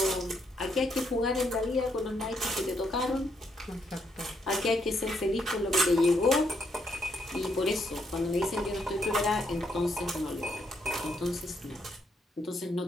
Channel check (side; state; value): both; normal; correlation 0.75